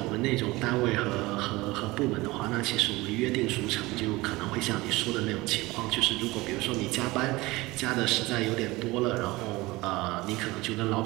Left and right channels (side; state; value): left; quieter; 21.1 dB